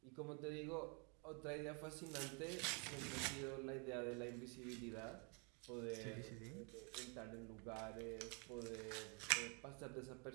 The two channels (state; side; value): quieter; left; 35.1 dB